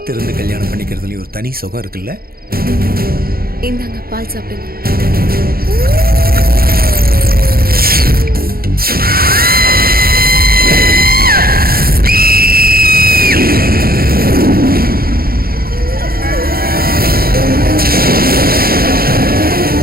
கல்யாணம் பண்ணிக்கிறதுலயும் ஒரு தனி சுகம் இருக்குல்ல. இந்தாங்க பால் சாப்பிடுங்க.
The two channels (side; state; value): left; late; 0.44 ms